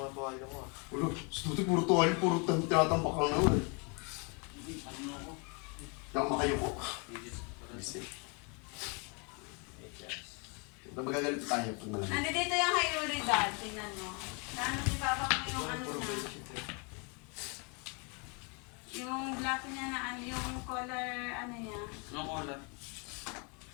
matuwala ko ah. Wala, sa tuti puro tuwali, puro tinatambak lang naman eh. Ano ako? Hindi ako makayuko. Magagalit tayo pag malamig. Nandito yung kay Yuri dad. Tingnan mo. Naano si Papa ko yung ano na. Yung black niya na ano, yung color ano niya. Anong color?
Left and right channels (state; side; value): quieter; right; 33.8 dB